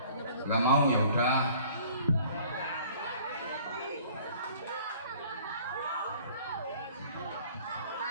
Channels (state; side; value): inverted; both; correlation -0.52